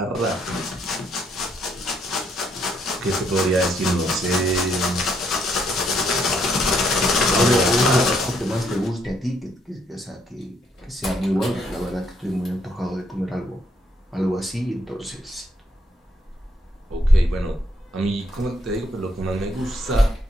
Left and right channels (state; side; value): normal; both; correlation 0.72